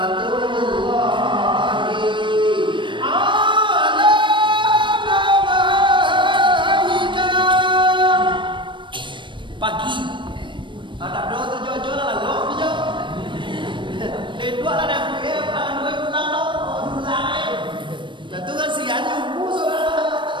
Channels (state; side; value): late; left; 0.23 ms